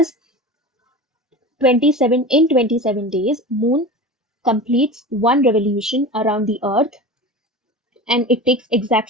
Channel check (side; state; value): both; normal; correlation 0.32